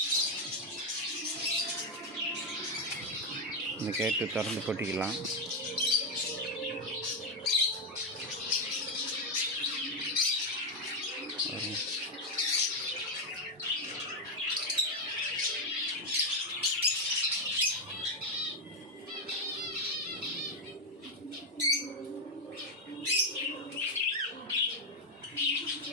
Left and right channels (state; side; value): normal; both; correlation 0.05